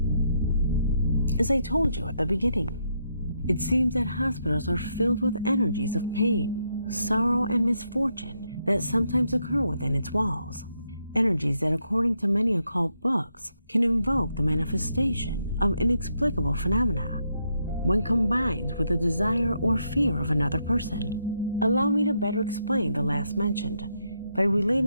As I told you at the beginning, it seems that hospitals are filled with energies of pain, sorrow, and misfortune that sometimes occur within its walls. Energies that, according to many occult books, can invoke the manifestation of inexplicable phenomena when combined with the desire or fear of another person. Allow me to better explain the last mentioned by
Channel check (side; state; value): both; inverted; correlation -0.78